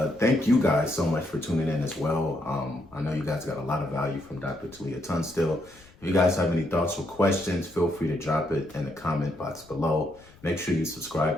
thank you guys so much for tuning in as well. I know you guys got a lot of value from Dr. Talia Tunstill. If you guys have any thoughts or questions, feel free to drop it in the comment box below. Make sure you subscribe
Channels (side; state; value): left; noise; rumble, 26 dB below the sound